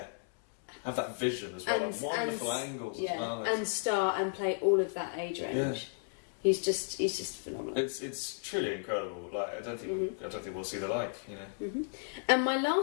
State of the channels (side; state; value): right; silent; digital silence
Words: Have that vision as well, and wonderful angles as well. And star and play all of that age range. Yeah. He's just phenomenal. It's truly incredible. Like I don't think we'll see the like. And my